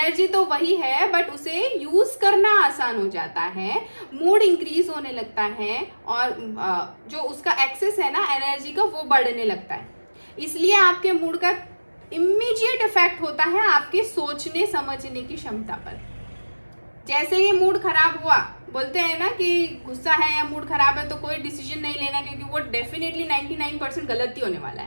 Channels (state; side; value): inverted; both; correlation -1.00